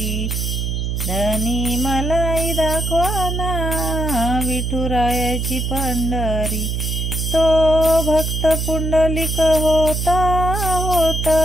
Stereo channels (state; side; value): noise; right; hum, 1 dB below the sound